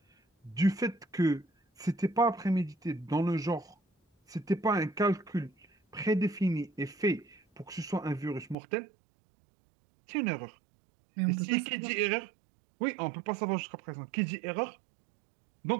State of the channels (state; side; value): drops out; left; at 8.6 s